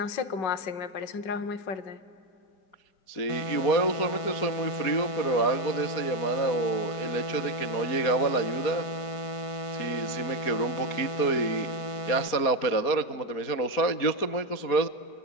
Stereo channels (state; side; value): late; right; 4.2 ms